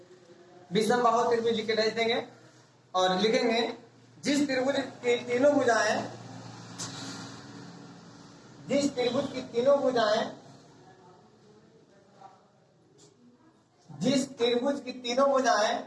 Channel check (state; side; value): identical; both; correlation 1.00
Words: विषमबाहु त्रिभुज लिख के भेज देंगे और लिखेंगे जिस त्रिभुज की तीनों भुजाएं, जिस त्रिभुज की तीनों भुजाएं, जिस त्रिभुज की तीनों भुजाएं